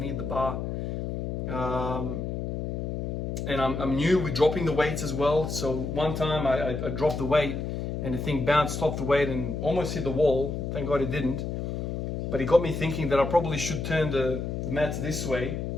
the bar. And I'm new with dropping the weights as well. So one time I dropped the weight and the thing bounced off the weight and almost hit the wall. Thank God it didn't. But it got me thinking that I probably should turn the mats this way,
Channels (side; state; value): left; noise; hum, 3 dB below the sound